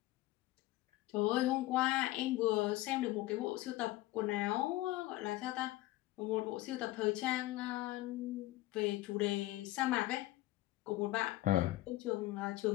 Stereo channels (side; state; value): right; quieter; 17.4 dB